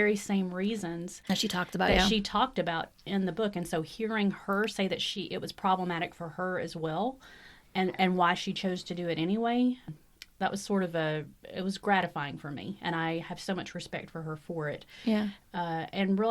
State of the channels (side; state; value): both; identical; correlation 1.00